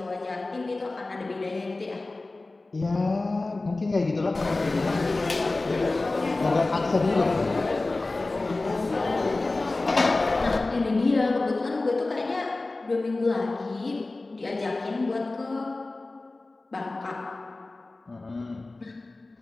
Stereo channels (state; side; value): quieter; right; 3.2 dB